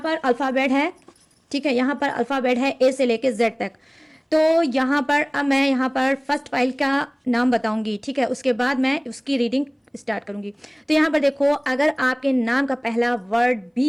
अल्फ़ाबेट है, ठीक है। यहाँ पर अल्फ़ाबेट है ए से लेके जेड तक। तो यहाँ पर अब मैं यहाँ पर फर्स्ट फाइल का नाम बताऊंगी, ठीक है, उसके बाद मैं उसकी रीडिंग स्टार्ट करूंगी। तो यहाँ पर देखो, अगर आपके नाम का पहला वर्ड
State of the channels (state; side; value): identical; both; correlation 1.00